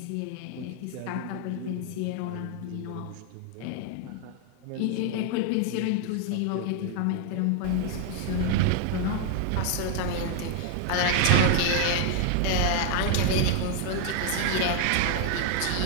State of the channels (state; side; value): different; both; correlation 0.00